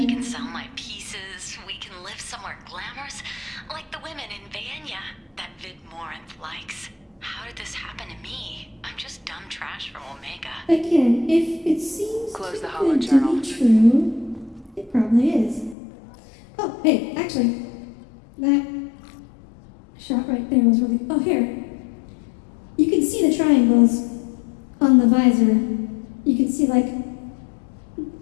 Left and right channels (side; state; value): right; drops out; at 15.8 s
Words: can sell my pieces. We can live somewhere glamorous, like the women in Vanya that Vid Morinth likes. How did this happen to me? I'm just dumb trash from Omega. Again, if it seems Close the too good to holojournal. be true, it probably is. Oh, hey, actually, that shot right there was really. Oh, here. You can see the triangles on the visor. You can see, like,